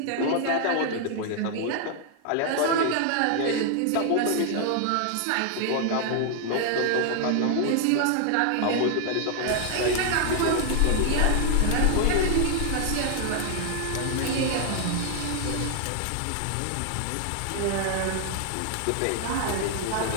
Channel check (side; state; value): both; different; correlation 0.00